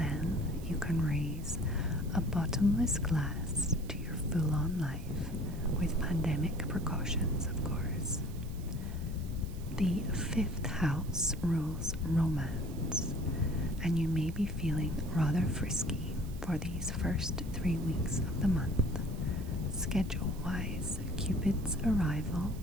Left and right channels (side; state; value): right; noise; hiss, 21 dB below the sound